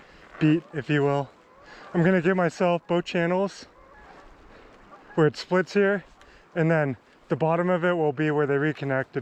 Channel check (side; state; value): both; identical; correlation 1.00